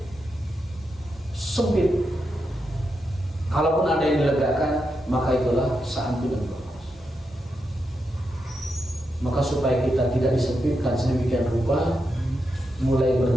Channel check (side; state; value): both; normal; correlation 0.85